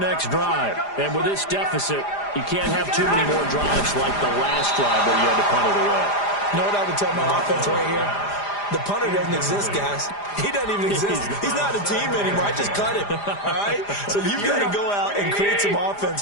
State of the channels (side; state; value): right; late; 4.9 ms